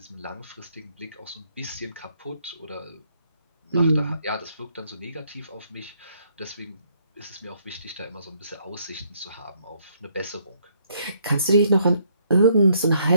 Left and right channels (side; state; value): both; inverted; correlation -0.70